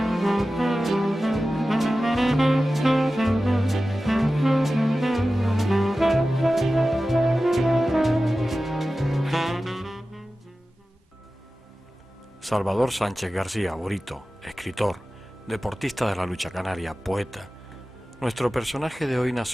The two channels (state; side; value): normal; both; correlation 0.95